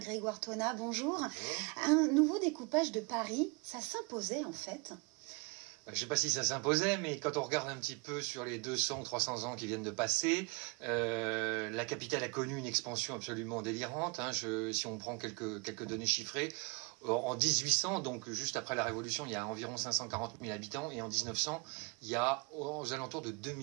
Thonas, bonjour. Un nouveau découpage de Paris, ça s'imposait en fait? Je ne sais pas si ça s'imposait, mais quand on regarde un petit peu sur les 200 ou 300 ans qui viennent de passer, la capitale a connu une expansion absolument délirante. Si on prend quelques données chiffrées, en 1800, donc juste après la Révolution, il y a environ 540 000 habitants, et en 1900, il y a aux alentours de 2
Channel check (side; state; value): left; quieter; 30.5 dB